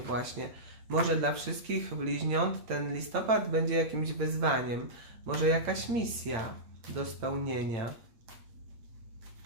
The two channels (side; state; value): left; late; 8.8 ms